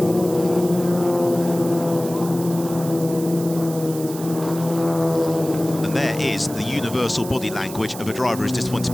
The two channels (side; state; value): right; noise; hiss, 13 dB below the sound